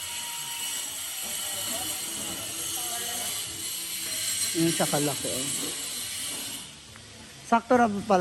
Yung sa kalaki. Oh. Sakto na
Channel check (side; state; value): both; identical; correlation 1.00